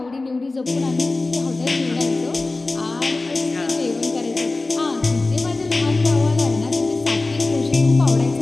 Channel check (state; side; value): quieter; right; 3.3 dB